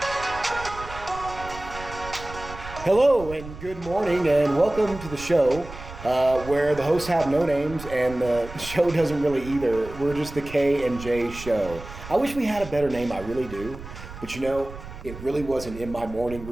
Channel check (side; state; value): right; noise; rumble, 13 dB below the sound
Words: Hello and good morning and welcome to the show where the hosts have no names and the show doesn't really either. We're just the K and J show. I wish we had a better name, I really do. But it really wasn't in my morning